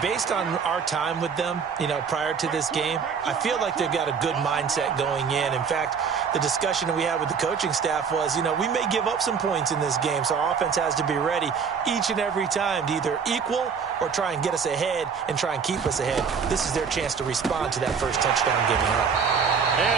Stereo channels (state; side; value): quieter; left; 6.2 dB